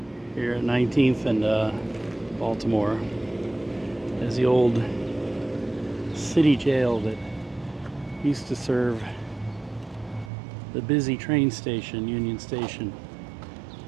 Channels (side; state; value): left; drops out; at 10.3 s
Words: here at 19th and Baltimore, is the old city jail that used to serve the busy train station, Union Station.